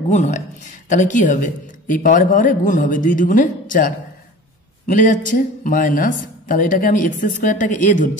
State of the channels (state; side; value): normal; both; correlation 0.39